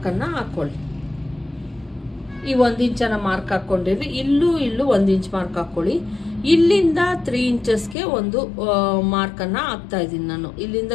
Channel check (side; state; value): right; drops out; at 8.0 s